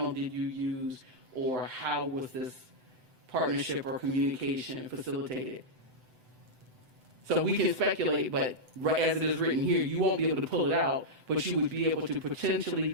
did you use or how was this partnership or communication facilitated? So we can speculate, but as it is written here, you won't be able to pull it out, but you would be able to potentially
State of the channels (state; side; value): late; left; 7.9 ms